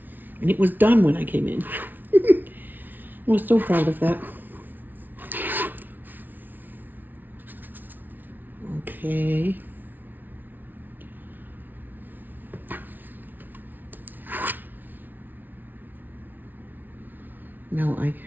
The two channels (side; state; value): left; late; 0.086 ms